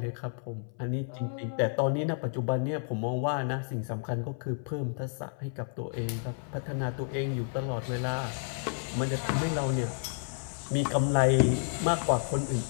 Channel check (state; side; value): silent; right; 57 dB below the other